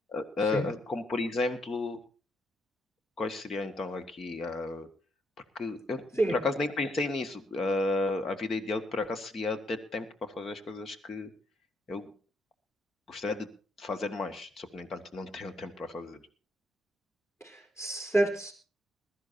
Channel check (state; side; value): normal; both; correlation 0.76